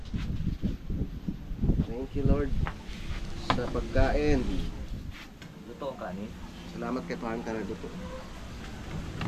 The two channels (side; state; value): both; identical; correlation 1.00